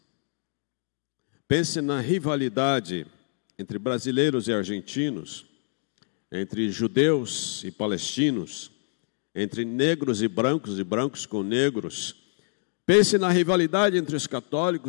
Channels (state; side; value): silent; right; 57 dB below the other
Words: Pense na rivalidade entre brasileiros e argentinos, entre judeus e palestinos, entre negros e brancos com negros. Pense na rivalidade entre os